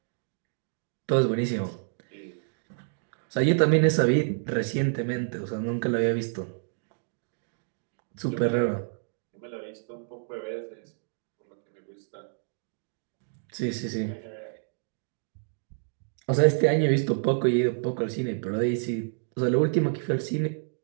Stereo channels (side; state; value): left; silent; digital silence